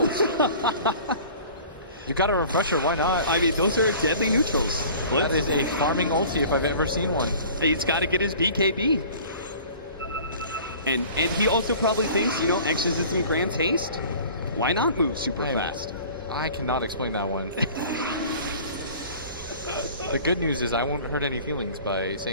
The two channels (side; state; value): both; inverted; correlation -0.45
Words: You got a refresher, why not? I mean, those are deadly neutrals. That is a farming ulti if I've ever seen one. He's got to get his BKB. And he also probably thinks, you know, Exorcism grants haste. Why not move super fast? I cannot explain that one. The good news is I won't hurt any feelings by